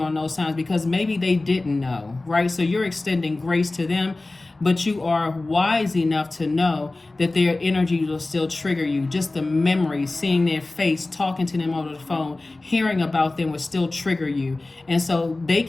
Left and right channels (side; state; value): right; quieter; 3.1 dB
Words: those times because maybe they didn't know, right? So you're extending grace to them, but you are wise enough to know that their energy will still trigger you. Just the memory, seeing their face, talking to them over the phone, hearing about them will still trigger you. And so they